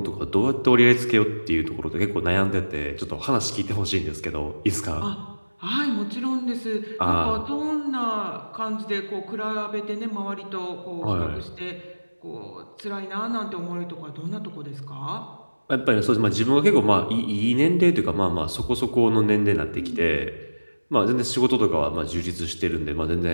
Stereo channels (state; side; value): inverted; both; correlation -1.00